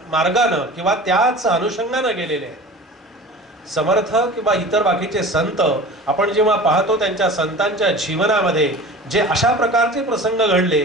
किंवा त्याच अनुषंगानं गेलेले आहेत. समर्थ किंवा इतर बाकीचे संत आपण जेव्हा पाहतो त्यांच्या संतांच्या जीवनामध्ये जे अशा प्रकारचे प्रसंग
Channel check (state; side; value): normal; both; correlation 0.38